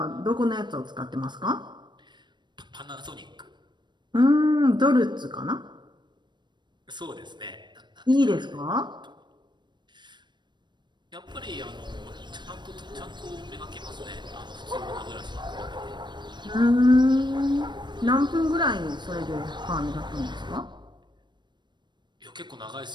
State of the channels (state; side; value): late; left; 0.22 ms